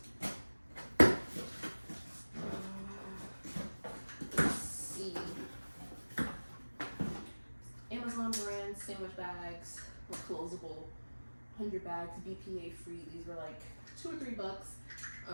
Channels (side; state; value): both; inverted; correlation -1.00